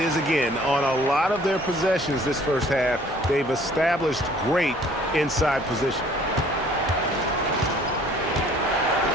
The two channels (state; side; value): normal; both; correlation 0.56